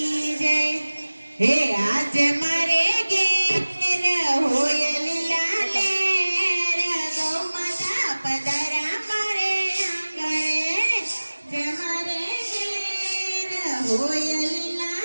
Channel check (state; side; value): inverted; both; correlation -1.00